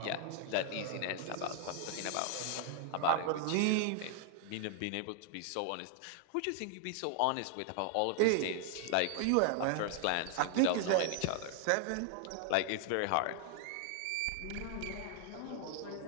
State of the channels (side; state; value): both; different; correlation 0.00